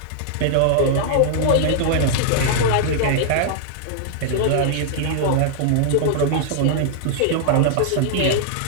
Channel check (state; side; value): different; both; correlation -0.01